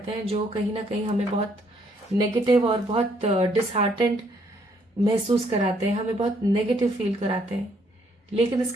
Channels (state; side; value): normal; both; correlation 0.68